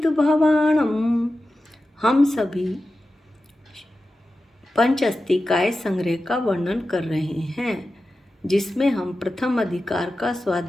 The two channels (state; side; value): normal; both; correlation 0.93